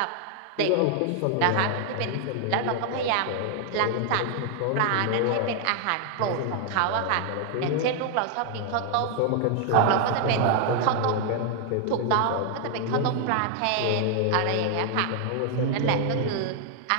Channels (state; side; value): different; both; correlation 0.00